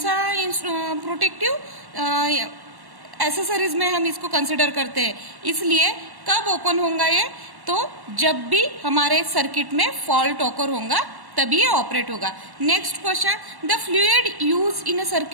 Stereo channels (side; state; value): left; late; 1.1 ms